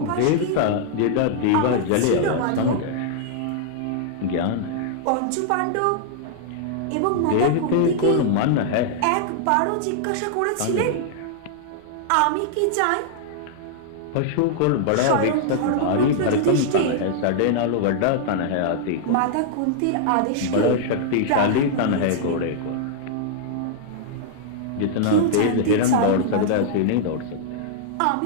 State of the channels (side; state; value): both; different; correlation -0.01